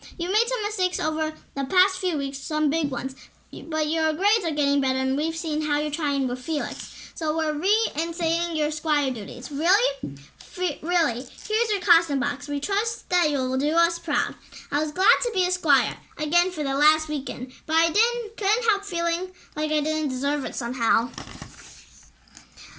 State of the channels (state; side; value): identical; both; correlation 1.00